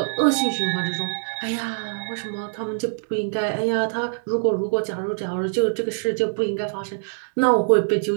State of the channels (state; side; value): silent; left; digital silence